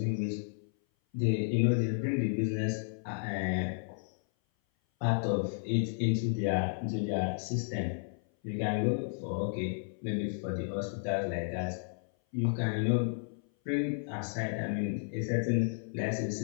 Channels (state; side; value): silent; right; 56 dB below the other